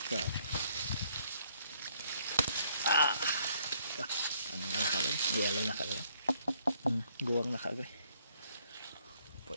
Ano na ka-agri? Yellow na ka-agri. Guwang na ka-agri.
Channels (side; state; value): both; inverted; correlation -0.67